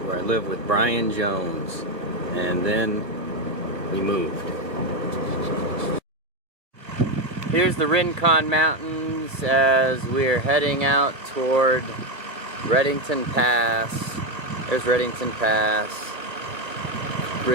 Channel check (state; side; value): late; left; 2.1 ms